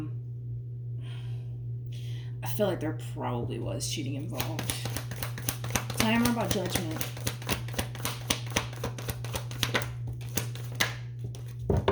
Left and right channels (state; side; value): identical; both; correlation 1.00